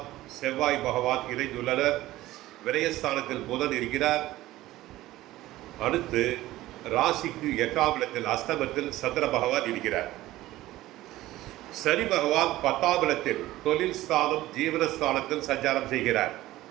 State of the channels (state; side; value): quieter; left; 16.3 dB